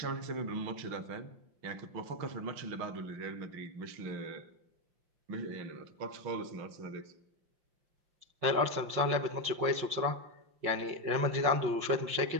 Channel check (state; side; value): late; left; 5.4 ms